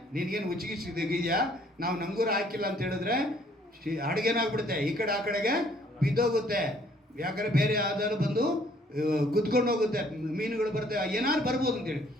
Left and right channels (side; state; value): both; normal; correlation 0.62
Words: ನಿನಗೇನು ಉಚ್ಚಿಗಿಸಿದೆಯಾ, ನಾವು ನಂಗೂರ ಹಾಕಿಲ್ಲ ಅಂತ ಹೇಳಿದ್ರೆ ಅಡುಗೆನಾಗ್ಬಿಡುತ್ತೆ, ಈ ಕಡೆ ಆ ಕಡೆಗೆ ಬಿದ್ದೋಗುತ್ತೆ. ಯಾಕಂದರೆ ಬೇರೆ ಯಾವ್ದಾದ್ರು ಬಂದು ಕುತ್ಕೊಂಡು ಹೋಗುತ್ತೆ, ಮೀನುಗಳು ಬರುತ್ತೆ, ಏನಾದ್ರು ಬರ್ಬೋದು ಅಂತೇಳಿ.